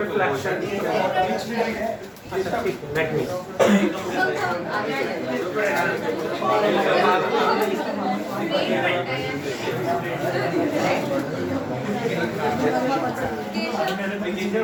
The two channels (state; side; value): identical; both; correlation 1.00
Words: अच्छा ठीक है, लेट मी।